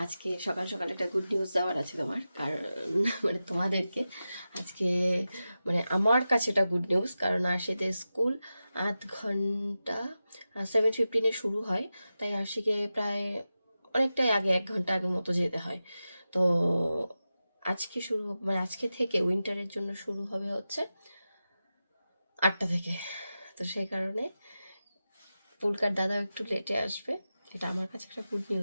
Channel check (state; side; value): inverted; both; correlation -0.93